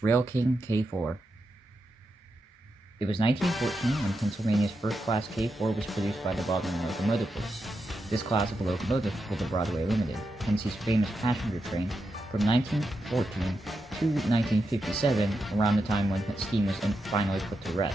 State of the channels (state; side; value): normal; both; correlation 0.86